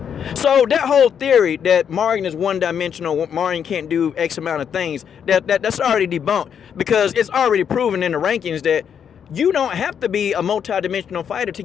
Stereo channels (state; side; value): quieter; right; 7.9 dB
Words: So that whole theory that Marion is one-dimensional, Marion can't do X amount of things, that's already debunked, because it's already proven in the rankings that you don't have to be a multi-dimensional fighter to